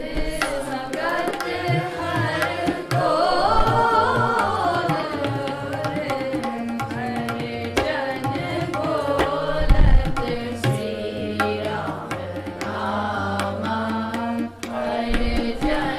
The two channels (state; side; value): identical; both; correlation 1.00